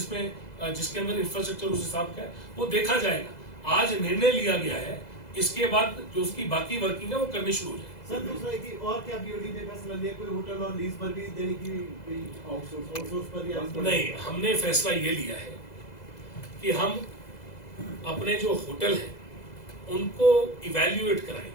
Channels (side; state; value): right; late; 2.0 ms